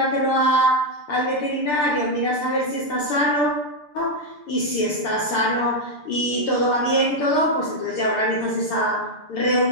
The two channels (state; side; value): late; right; 6.8 ms